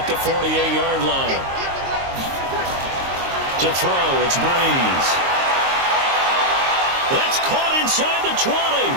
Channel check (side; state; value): left; late; 22 ms